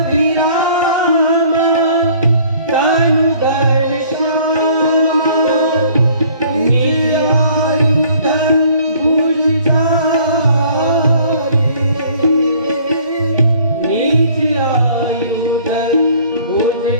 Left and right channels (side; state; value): both; inverted; correlation -0.55